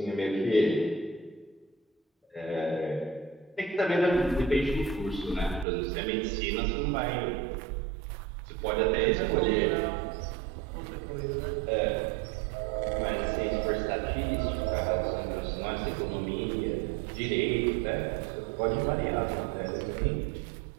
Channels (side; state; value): left; drops out; at 5.7 s